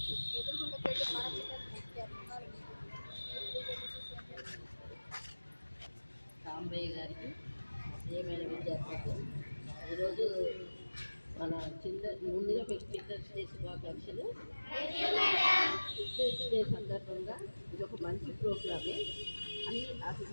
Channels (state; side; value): inverted; both; correlation -1.00